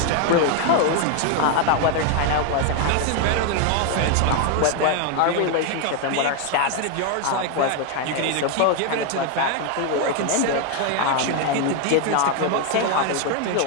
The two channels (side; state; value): both; different; correlation 0.01